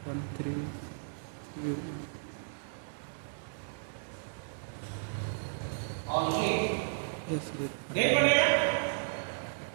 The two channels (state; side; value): silent; left; digital silence